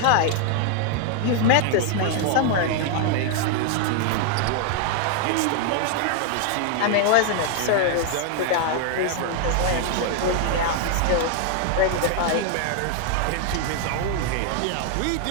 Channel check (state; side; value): different; both; correlation 0.00